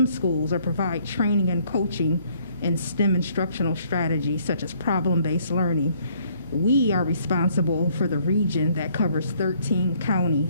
schools or provide training and coaching in STEM instructional strategies such as problem-based learning. We are responsible for the region that covers 13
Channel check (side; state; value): both; inverted; correlation -0.64